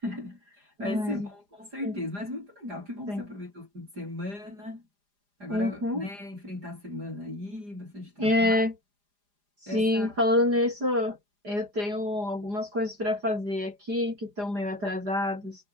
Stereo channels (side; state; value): left; late; 4.9 ms